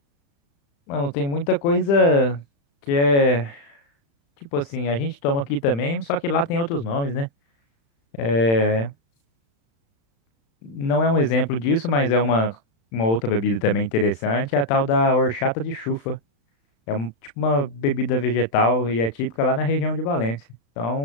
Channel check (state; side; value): late; right; 35 ms